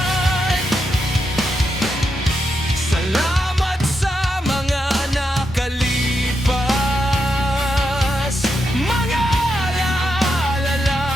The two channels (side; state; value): both; normal; correlation 0.84